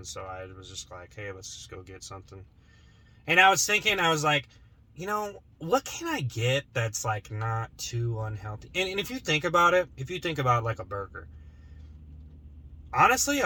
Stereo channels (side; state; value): both; identical; correlation 1.00